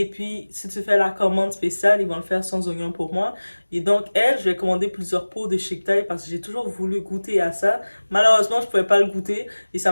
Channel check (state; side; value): inverted; both; correlation -1.00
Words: puis, si tu fais la commande spéciale, ils vont le faire sans oignon pour moi. Et donc, elle, je lui ai commandé plusieurs pots de Chic Thai parce que j'ai toujours voulu goûter à ça. Malheureusement, je pouvais pas le goûter et ça